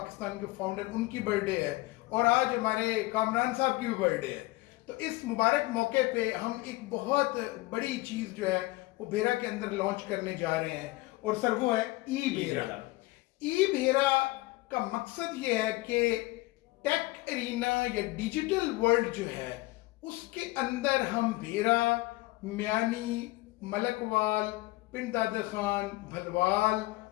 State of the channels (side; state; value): right; quieter; 20.5 dB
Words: के फाउंडर, उनकी बर्थडे है और आज हमारे कामरान साहब की भी बर्थडे है। तो इस मुबारक मौके पे हम एक बहुत बड़ी चीज़ जो है वो भेरा के अंदर लॉन्च करने जा रहे हैं और सर वो है ई भेरा। ई भेरा का मकसद ये है कि टेक एरिना या डिजिटल वर्ल्ड जो है उसके अंदर हम भेरा, मियानी, मलकवाल, पिंड दादा खान, भलवाल,